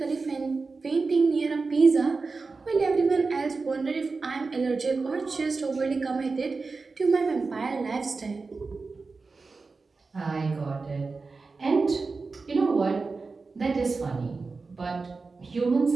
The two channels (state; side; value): quieter; left; 4.2 dB